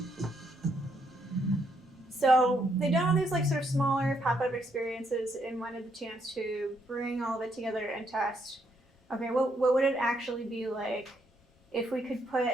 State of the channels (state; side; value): normal; both; correlation 0.74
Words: So they done all these like sort of smaller pop-up experiences and wanted the chance to bring all of it together and test. Okay, what would it actually be like if we could put